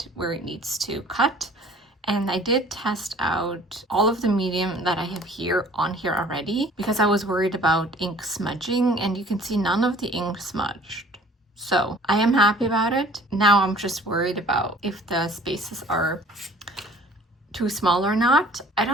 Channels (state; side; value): normal; both; correlation 0.51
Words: where it needs to cut. And I did test out all of the medium that I have here on here already because I was worried about ink smudging, and you can see none of the ink smudged. So I am happy about it. Now I'm just worried about if the spaces are too small or not. I